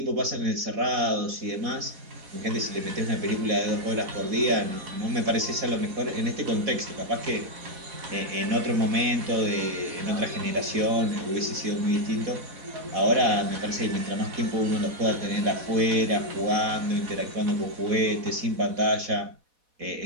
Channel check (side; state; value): left; late; 4.1 ms